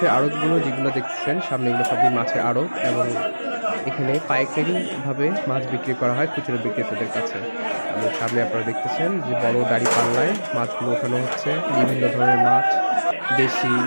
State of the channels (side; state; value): both; inverted; correlation -1.00